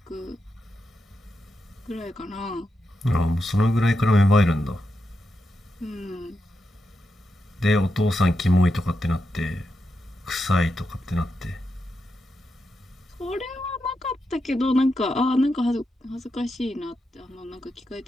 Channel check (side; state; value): both; normal; correlation 0.86